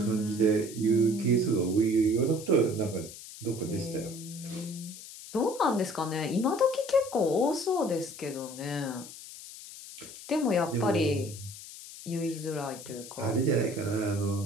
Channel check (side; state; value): left; noise; hiss, 14 dB below the sound